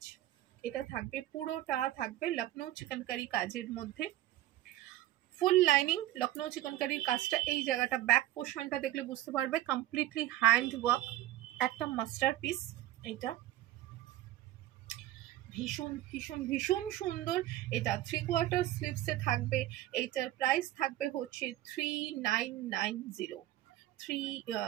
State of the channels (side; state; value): left; quieter; 14.6 dB